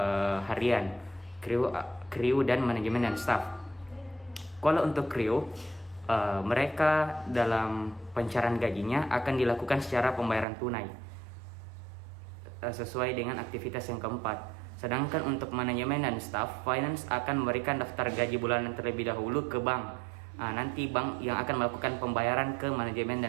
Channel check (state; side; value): drops out; left; at 10.5 s